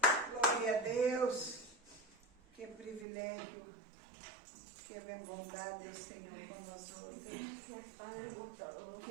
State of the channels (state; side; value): drops out; left; at 3.1 s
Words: Glória a Deus. Que privilégio. Que bondade o Senhor conosco. Gracias, Padre, por todo.